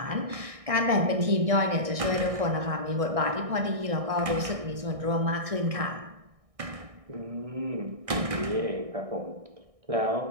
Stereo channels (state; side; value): late; left; 1.6 ms